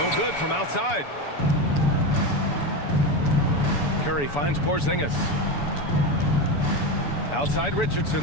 No good from outside. Curry finds Porzingis. Outside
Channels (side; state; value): right; late; 7.0 ms